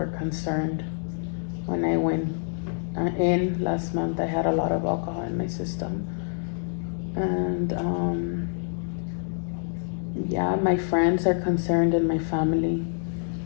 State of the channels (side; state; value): right; silent; digital silence